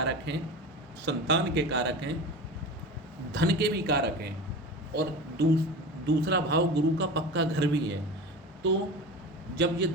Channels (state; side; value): normal; both; correlation 0.31